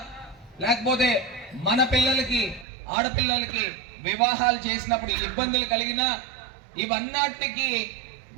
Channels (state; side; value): drops out; left; at 2.7 s